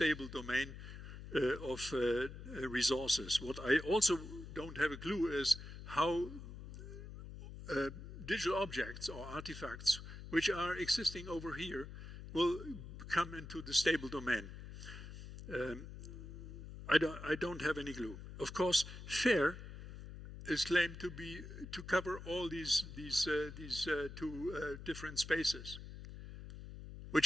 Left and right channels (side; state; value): left; noise; hum, 11 dB below the sound